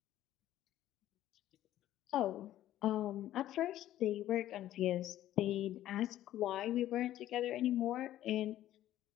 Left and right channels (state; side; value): quieter; right; 13.2 dB